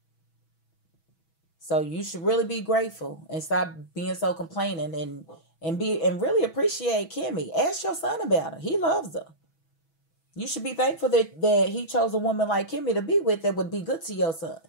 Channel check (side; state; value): right; late; 6.1 ms